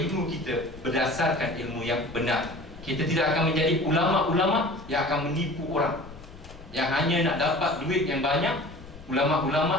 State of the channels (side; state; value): left; noise; rumble, 17 dB below the sound